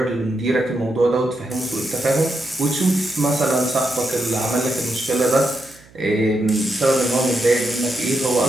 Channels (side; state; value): right; noise; hum, 26 dB below the sound